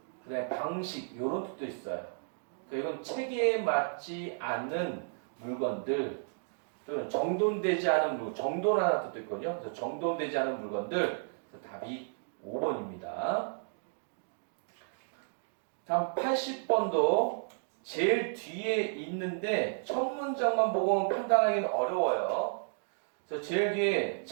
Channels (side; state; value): left; silent; digital silence